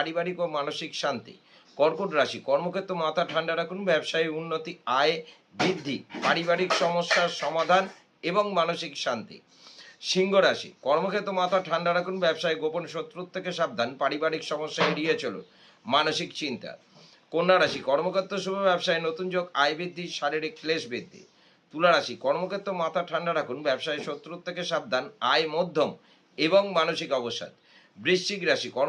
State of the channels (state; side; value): identical; both; correlation 1.00